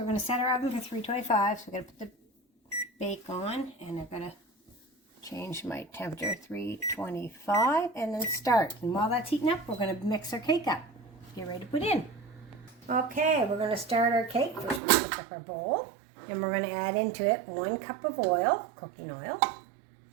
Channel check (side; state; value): left; drops out; at 14.8 s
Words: going to set our oven for 325, so we're going to put the bake on, and I'm going to change my temperature, 325, and then start. And while that's heating up, we're going to mix our cake up. Get ready to put in. Okay, we're going to start our cake. First we're going to pick up our bowl, and we're going to add into it 1 cup of oil, cooking oil.